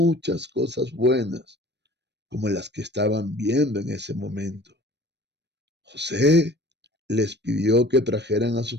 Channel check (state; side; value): late; left; 0.50 ms